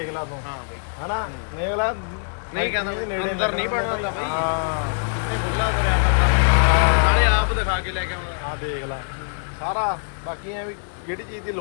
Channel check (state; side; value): silent; right; 63 dB below the other